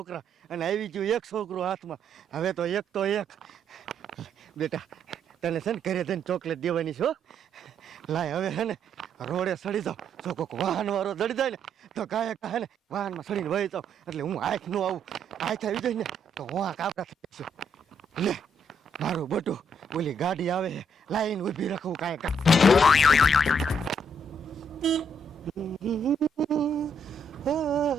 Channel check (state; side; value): normal; both; correlation 0.72